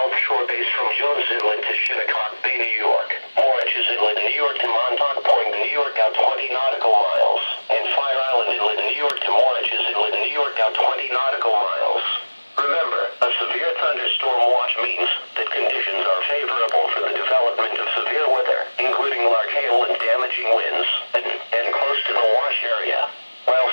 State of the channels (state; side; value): inverted; both; correlation -1.00